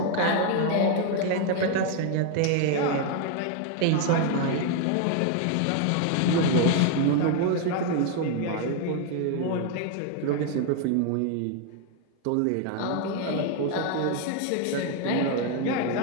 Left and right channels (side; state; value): both; different; correlation 0.00